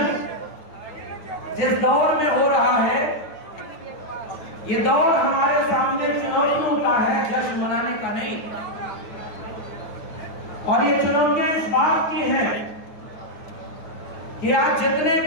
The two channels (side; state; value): right; late; 9.4 ms